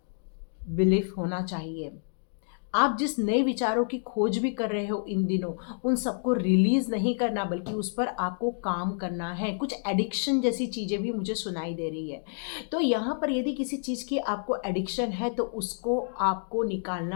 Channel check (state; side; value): silent; right; digital silence